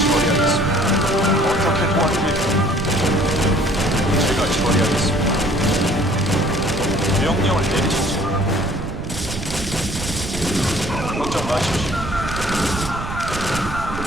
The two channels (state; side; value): noise; right; rumble, 8 dB below the sound